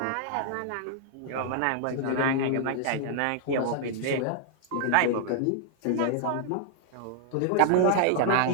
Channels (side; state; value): both; different; correlation -0.01